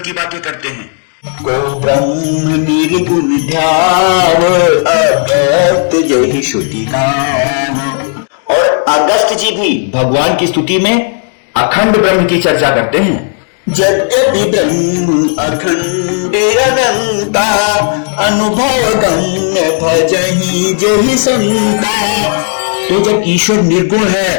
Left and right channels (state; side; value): silent; right; 60 dB below the other